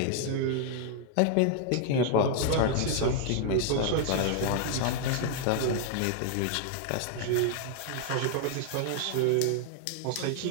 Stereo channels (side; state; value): both; different; correlation 0.00